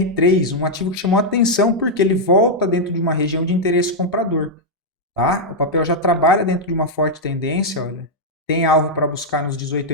um ativo que chamou atenção porque ele volta dentro de uma região de interesse comprador. Tá? O papel já trabalha dentro de uma forte tendência, olha. Tem alvo para buscar nos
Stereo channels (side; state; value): both; normal; correlation -0.03